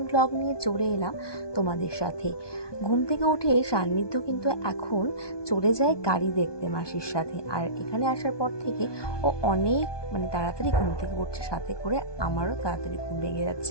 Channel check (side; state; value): right; late; 1.2 ms